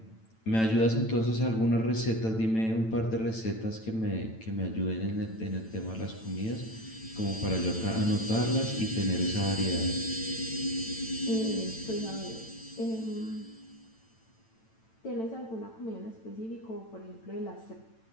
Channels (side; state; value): right; late; 9.0 ms